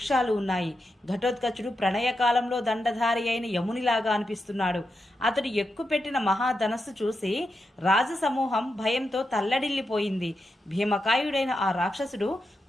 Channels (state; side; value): normal; both; correlation 0.87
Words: ఉన్నాయి. ఘటోత్కచుడు ప్రణయకాలంలో దండధారి అయిన యమునిలాగా అనిపిస్తున్నాడు. అతడు ఎక్కుపెట్టిన మహాధనస్సు చూసి రాజసమూహం భయంతో తల్లడిల్లిపోయింది. భీమకాయుడైన ఆ రాక్షసుడు